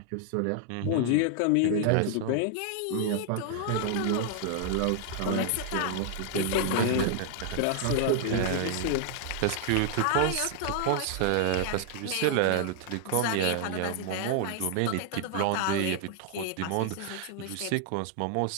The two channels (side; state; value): both; different; correlation 0.00